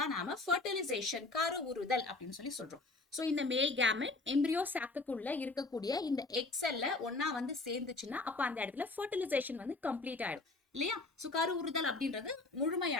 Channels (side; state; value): right; quieter; 3.4 dB